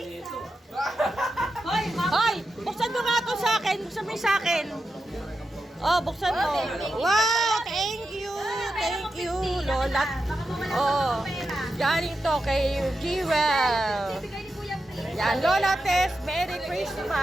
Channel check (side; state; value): both; normal; correlation 0.89